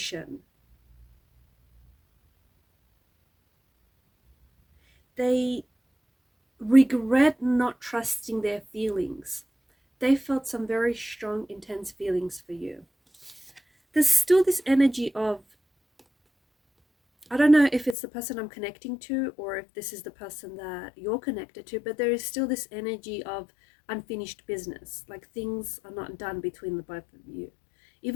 They regret not trusting their feelings. They felt some very strong, intense feelings for you. There's still this energy of, I don't know if it's the person I'm connecting to or if this is the person that you're connected to, but there is still this energy of unfinished business, like things are not done between the both of you.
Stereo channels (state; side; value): drops out; right; at 17.9 s